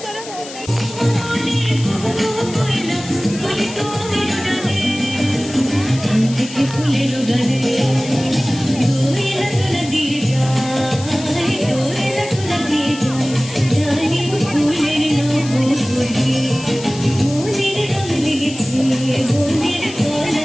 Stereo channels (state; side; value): noise; left; hiss, 14 dB below the sound